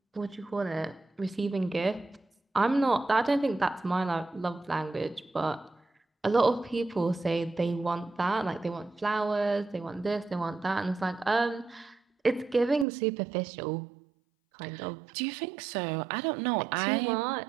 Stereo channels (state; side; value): drops out; left; at 12.9 s